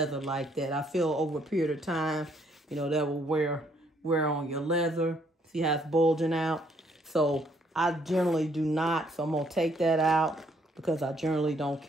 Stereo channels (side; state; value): both; normal; correlation 0.68